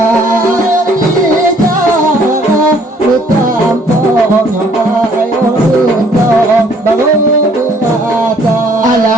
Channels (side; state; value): both; normal; correlation 0.61